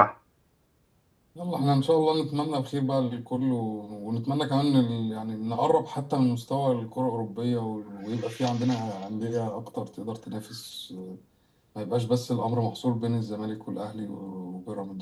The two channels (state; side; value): identical; both; correlation 1.00